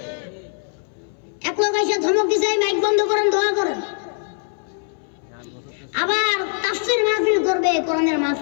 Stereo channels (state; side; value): silent; right; 62 dB below the other